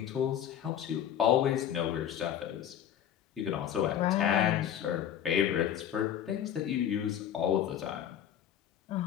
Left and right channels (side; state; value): right; quieter; 10.0 dB